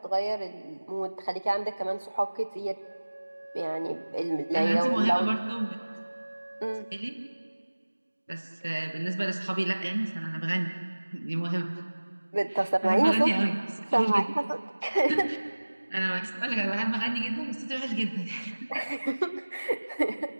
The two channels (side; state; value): both; inverted; correlation -1.00